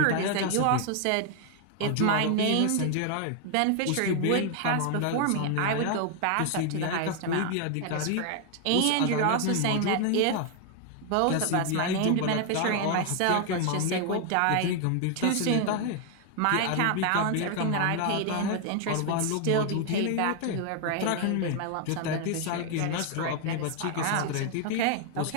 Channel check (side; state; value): both; different; correlation 0.00